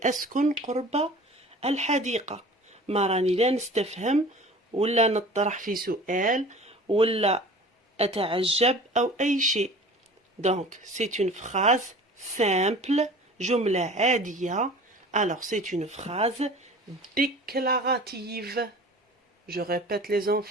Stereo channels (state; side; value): normal; both; correlation 0.43